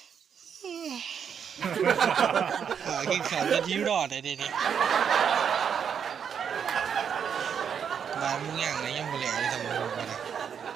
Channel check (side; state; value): left; quieter; 7.6 dB